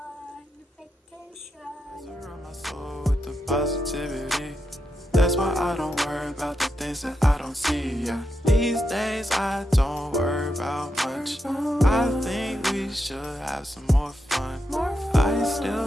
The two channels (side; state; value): both; normal; correlation 0.84